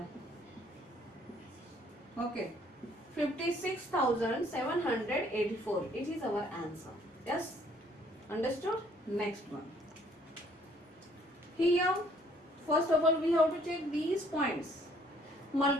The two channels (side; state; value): both; normal; correlation 0.62